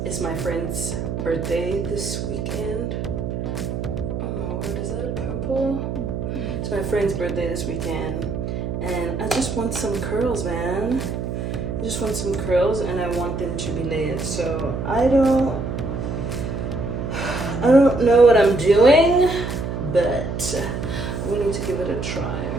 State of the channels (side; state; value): right; noise; hum, 4 dB below the sound